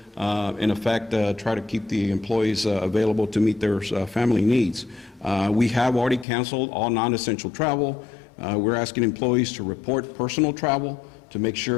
in effect, try to keep the employees available to meet their family needs. We have already canceled all non-essential travel. We're asking employees to report personal travel to make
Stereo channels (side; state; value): right; drops out; at 6.2 s